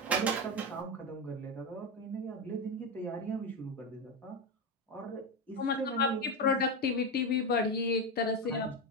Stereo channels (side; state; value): both; normal; correlation 0.13